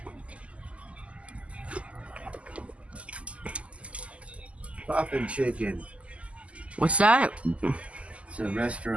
Poppin' Chicken. What's that? It's a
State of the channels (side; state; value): left; late; 0.061 ms